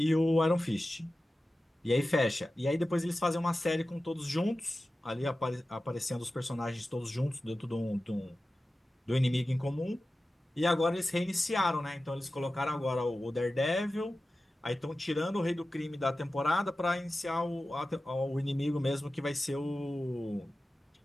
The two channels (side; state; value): both; normal; correlation 0.95